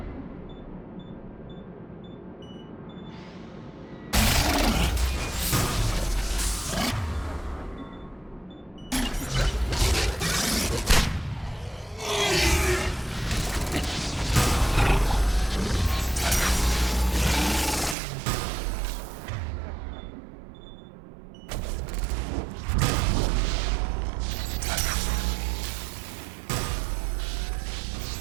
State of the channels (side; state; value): left; drops out; at 17.9 s